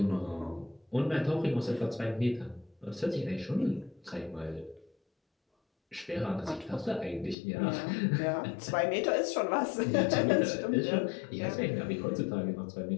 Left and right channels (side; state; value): right; drops out; at 7.4 s